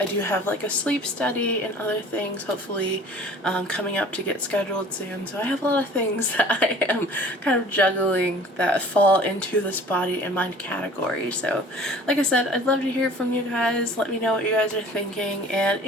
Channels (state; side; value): normal; both; correlation 0.48